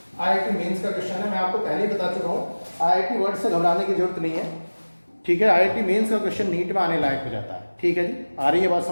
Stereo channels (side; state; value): both; inverted; correlation -1.00